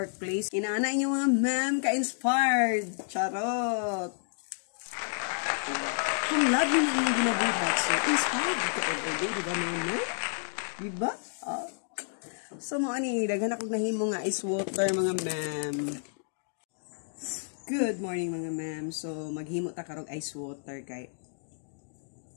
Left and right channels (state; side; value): silent; right; digital silence